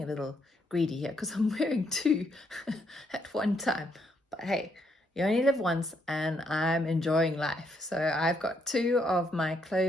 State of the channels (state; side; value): normal; both; correlation 0.74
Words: a little greedy here because I'm wearing two at one time, but hey, you only live once and I'm enjoying life. So I've got two of my